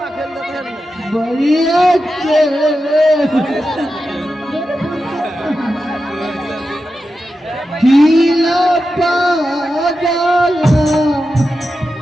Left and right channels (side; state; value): both; normal; correlation 0.90